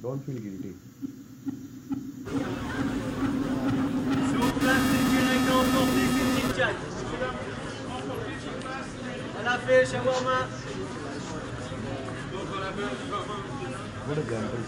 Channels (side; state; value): both; identical; correlation 1.00